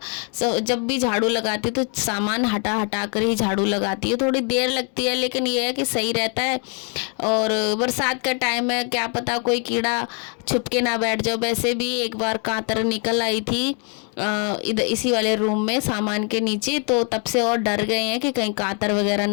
जब भी झाड़ू लगाती तो सामान हटा कर ही झाड़ू लगाती हूँ, थोड़ी देर लगती है लेकिन ये है कि सही रहता है। और बरसात का टाइम है, क्या पता कोई कीड़ा छुप के ना बैठ जाओ। वैसे भी एक बार कांतर निकल आई थी इधर इसी वाले रूम में सामान के नीचे, तो तब से और डर गए हैं कि कहीं कांतर वगैरह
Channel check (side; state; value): right; quieter; 39.0 dB